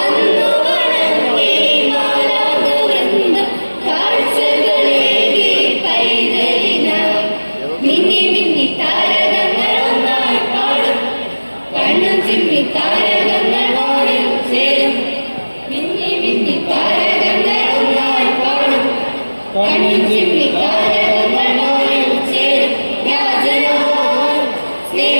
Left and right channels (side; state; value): both; inverted; correlation -1.00